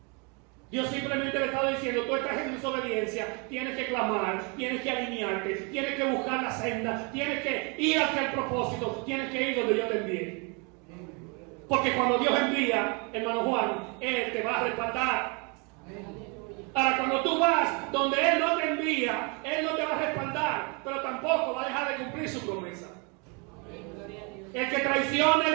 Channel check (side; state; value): left; quieter; 32.3 dB